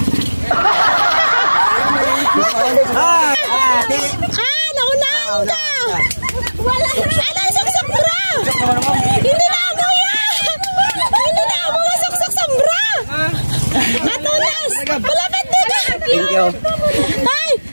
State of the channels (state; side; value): inverted; both; correlation -1.00